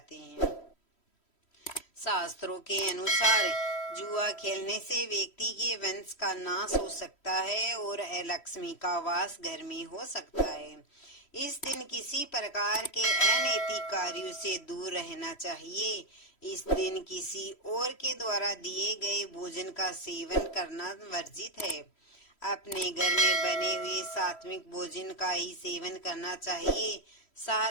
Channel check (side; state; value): right; late; 3.1 ms